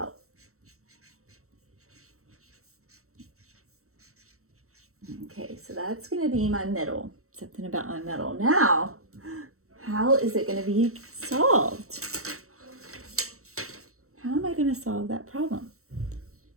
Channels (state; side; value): late; left; 0.64 ms